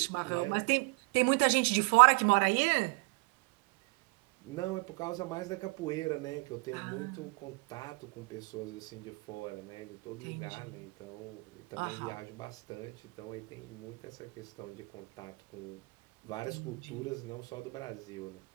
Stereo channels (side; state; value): left; quieter; 28.2 dB